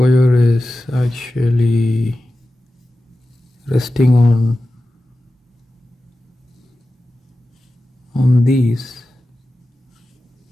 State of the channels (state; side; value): normal; both; correlation 0.94